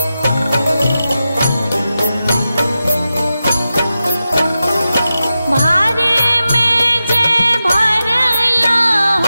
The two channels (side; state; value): both; inverted; correlation -0.92